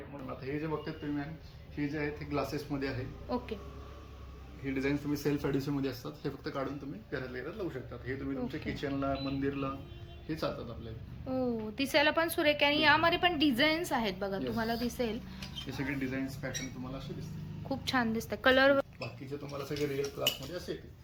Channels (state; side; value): identical; both; correlation 1.00